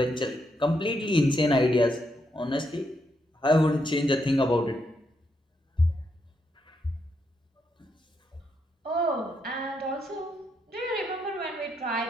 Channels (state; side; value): normal; both; correlation 0.79